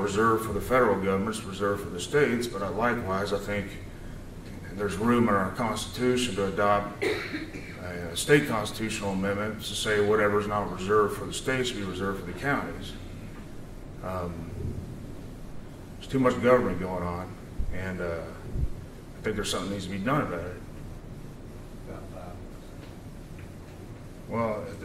for the federal government is reserved for the states, but likewise, I think there's room in our Constitution to adopt a state constitutional amendment to say whatever's not reserved for the states should be reserved for the counties. There's too much government going on, and I think there's something that needs to be done about it. Well,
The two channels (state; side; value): identical; both; correlation 1.00